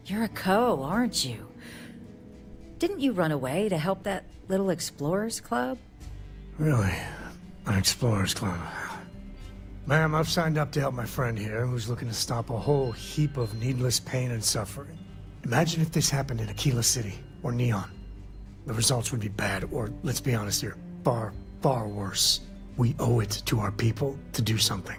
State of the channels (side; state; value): both; identical; correlation 1.00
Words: You're a Co, aren't you? Didn't you run away to help that little explorers club? Really? An explorers club? Ma'am, I've signed up to help my friend here, who's looking to stop a whole heap of needless pain and suffering. Imagine if this happened in Aquila City, or Neon. The results would be bad, or, let's be honest here, far, far worse. We owe it to our people to do something.